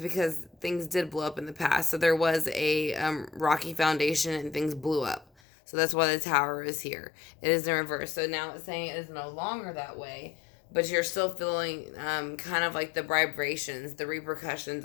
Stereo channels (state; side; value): drops out; right; at 5.2 s